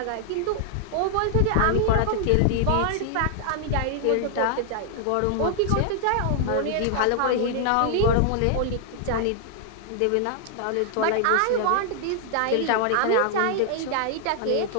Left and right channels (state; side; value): different; both; correlation 0.00